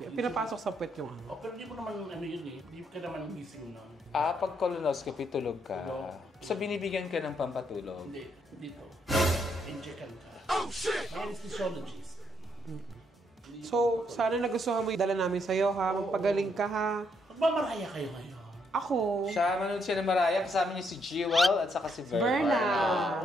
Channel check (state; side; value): normal; both; correlation 0.74